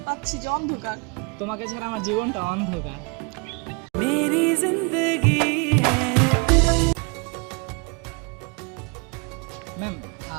পাচ্ছি যে অন্ধকার। তোমাকে ছাড়া আমার জীবনটা অন্ধকার। मेरी जिंदगी है। ম্যাম,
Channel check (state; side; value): quieter; left; 31.5 dB